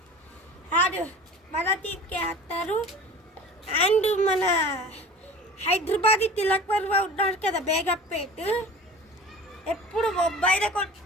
అండ్ మన టీంకే ఆడతారు. అండ్ మన హైదరాబాద్ తిలక్ వర్మ ఉన్నాడు కదా బేగంపేట్, ఎప్పుడు ముంబైలో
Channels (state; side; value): normal; both; correlation 0.39